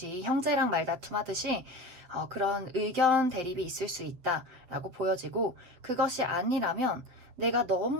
형제랑 말다툼 하듯이 그런 의견 대립이 있을 수 있다라고 보여지고, 그것이 아니라면 내가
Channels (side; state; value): left; late; 7.5 ms